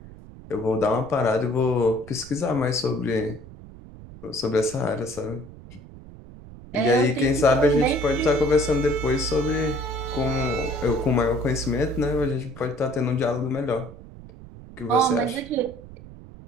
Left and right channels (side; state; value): right; noise; rumble, 17 dB below the sound